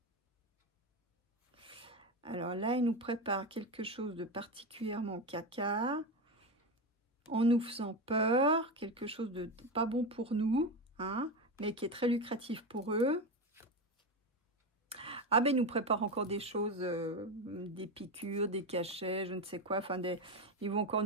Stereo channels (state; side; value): normal; both; correlation 0.16